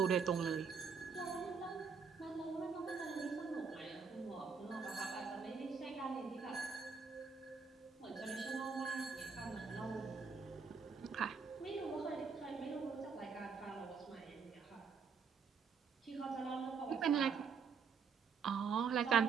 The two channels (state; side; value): quieter; left; 5.7 dB